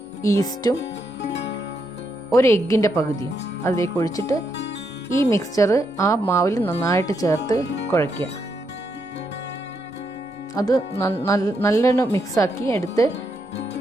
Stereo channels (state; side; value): normal; both; correlation 0.80